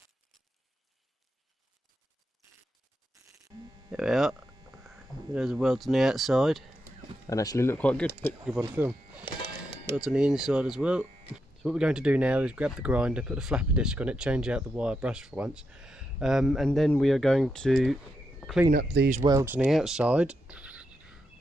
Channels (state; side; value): normal; both; correlation 0.84